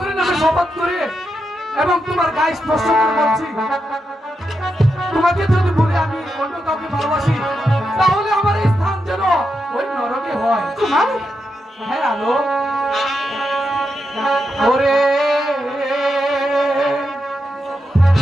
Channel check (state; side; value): normal; both; correlation 0.85